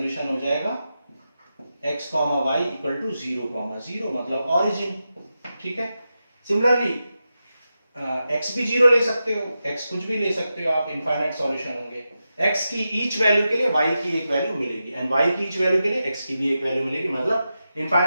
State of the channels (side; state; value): both; inverted; correlation -0.90